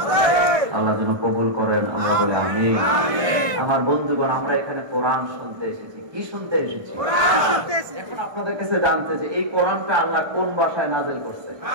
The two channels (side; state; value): left; late; 1.2 ms